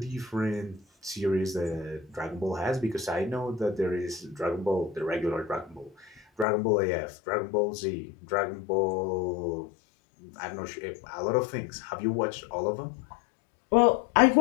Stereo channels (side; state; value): right; drops out; at 6.5 s